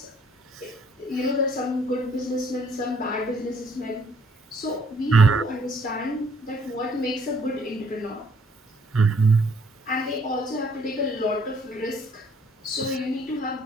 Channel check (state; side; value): normal; both; correlation 0.63